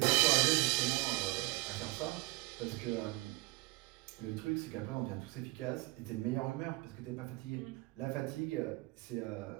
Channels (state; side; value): quieter; left; 23.3 dB